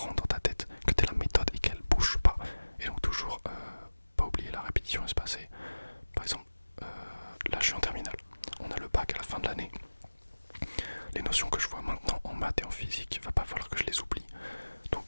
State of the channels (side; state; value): both; inverted; correlation -1.00